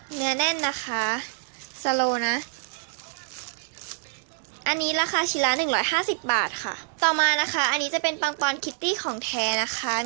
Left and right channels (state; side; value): silent; left; 61 dB below the other